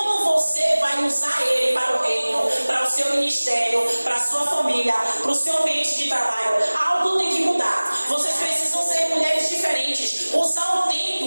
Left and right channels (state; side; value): inverted; both; correlation -1.00